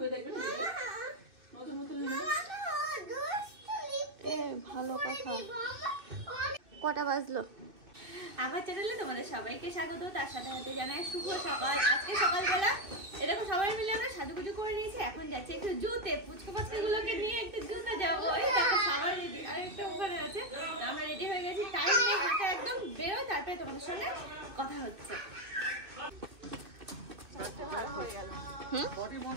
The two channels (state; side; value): late; left; 2.9 ms